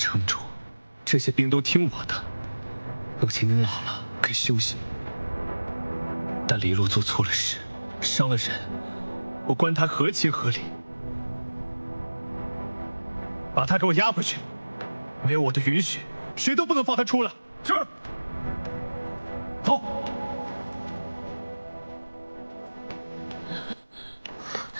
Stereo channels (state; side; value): inverted; both; correlation -1.00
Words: 主，这些兵都听我的。母亲您老了，该休息。但黎洛做错了事，伤了人，我关他合情合理。把他给我押回去，没有我的允许，谁都不能放他出来。是。走。